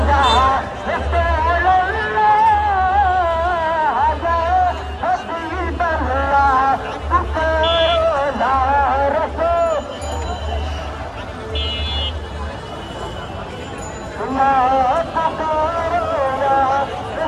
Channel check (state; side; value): identical; both; correlation 1.00